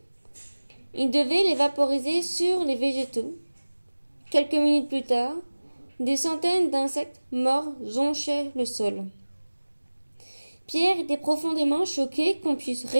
il devait les vaporiser sur les végétaux. Quelques minutes plus tard, des centaines d'insectes morts jonchaient le sol. Pierre était profondément choqué qu'on puisse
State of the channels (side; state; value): both; inverted; correlation -1.00